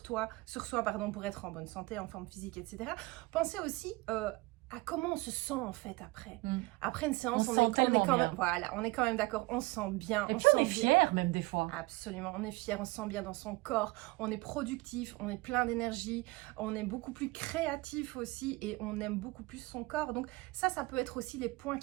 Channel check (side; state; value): left; quieter; 22.7 dB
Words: pour être en bonne santé, en forme physique, etc. Pensez aussi à comment on se sent en fait après. Après une séance, on est quand même, voilà, on est quand même d'accord, on se sent bien. Et puis on est fier même des fois. Absolument, on est fier, on se sent bien dans son corps, on est productif, on est plein d'énergie, on est beaucoup plus créatif aussi et on aime beaucoup plus son corps. Donc ça peut être aussi les points